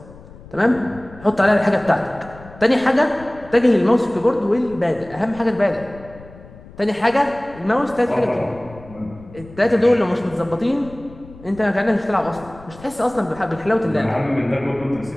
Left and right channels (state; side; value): noise; left; rumble, 20 dB below the sound